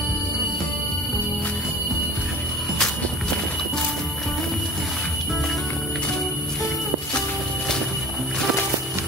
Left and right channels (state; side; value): normal; both; correlation 0.39